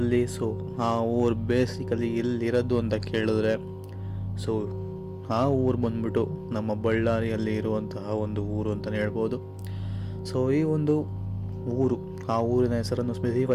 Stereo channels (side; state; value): both; identical; correlation 1.00